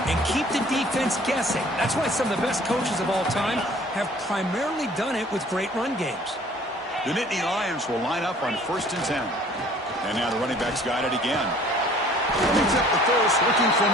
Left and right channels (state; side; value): normal; both; correlation 0.53